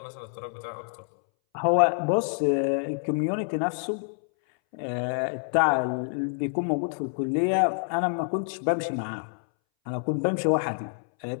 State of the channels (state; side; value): silent; right; 60 dB below the other